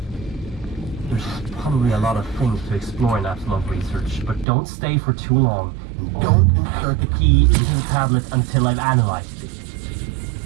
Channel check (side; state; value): left; drops out; at 4.5 s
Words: There's probably a lot of things to explore in Apsulov research, but don't stay for too long. Don't insert the key into the tablet until I've analyzed it.